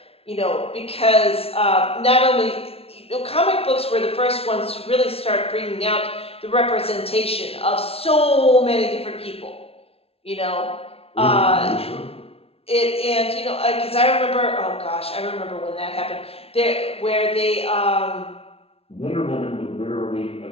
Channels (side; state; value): right; late; 0.28 ms